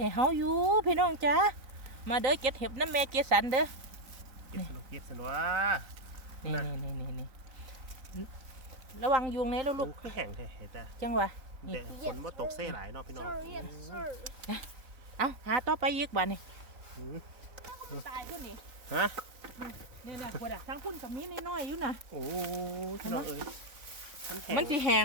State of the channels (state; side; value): late; left; 3.9 ms